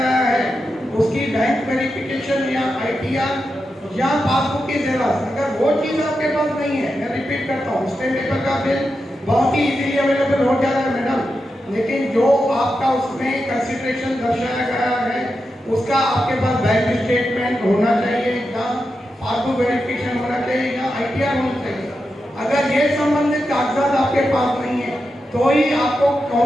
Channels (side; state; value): both; normal; correlation 0.88